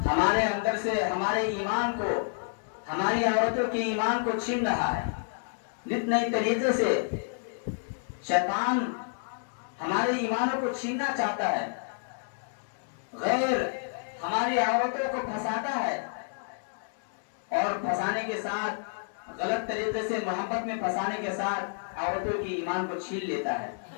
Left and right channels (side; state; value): right; silent; digital silence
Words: ہمارے اندر سے ہمارے ایمان کو، ہماری عورتوں کے ایمان کو چھین رہا ہے. نت نئے طریقے سے شیطان ہمارے ایمانوں کو چھیننا چاہتا ہے، غیر ہماری عورتوں کو پھنساتا ہے اور پھنسانے کے ساتھ غلط طریقے سے محبت میں پھنسانے کے ساتھ عورتوں کی ایمان کو چھین لیتا ہے.